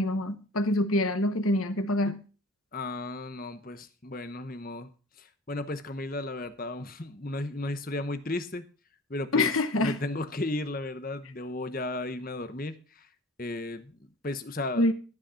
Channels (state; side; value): normal; both; correlation 0.43